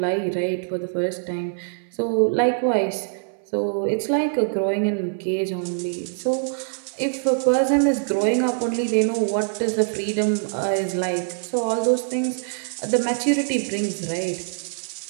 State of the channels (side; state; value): left; silent; 59 dB below the other